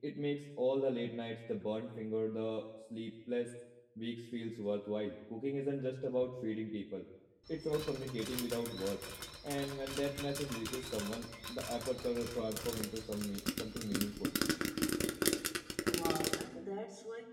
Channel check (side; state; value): both; identical; correlation 1.00